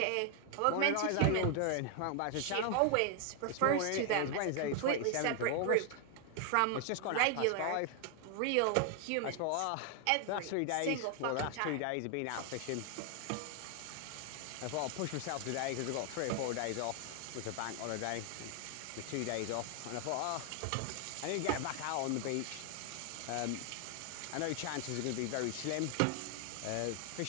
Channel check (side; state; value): both; different; correlation 0.00